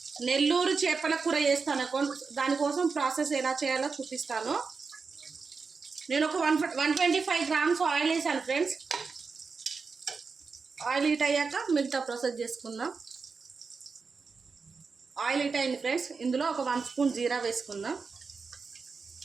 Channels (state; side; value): quieter; left; 4.9 dB